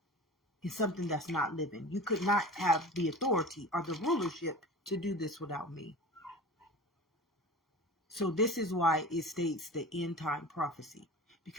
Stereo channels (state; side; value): normal; both; correlation 0.35